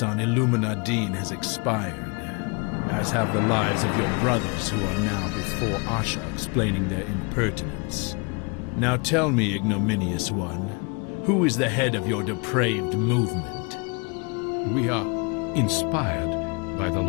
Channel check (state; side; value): quieter; right; 31.8 dB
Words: on Illuminadine has expired, as have the lives of your brothers who are now before Asha explaining their impertinence. Now tell me, ignominious one, who is the head of your depraved movement? We are inspired by the